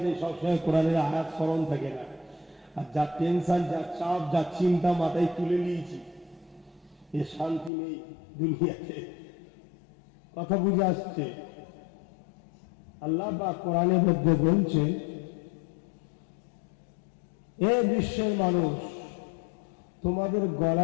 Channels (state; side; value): drops out; right; at 7.7 s